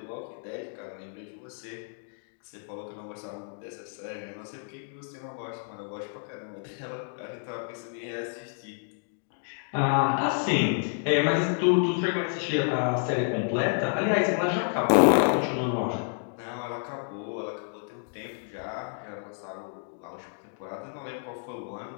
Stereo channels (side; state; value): right; silent; 57 dB below the other